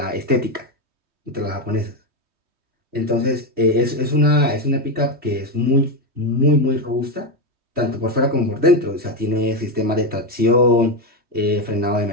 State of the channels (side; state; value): left; late; 3.2 ms